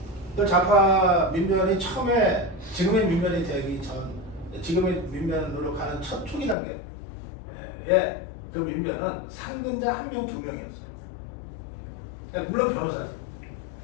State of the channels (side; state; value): right; drops out; at 6.6 s